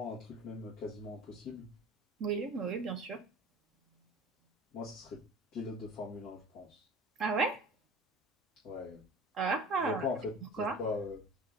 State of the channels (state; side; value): normal; both; correlation 0.41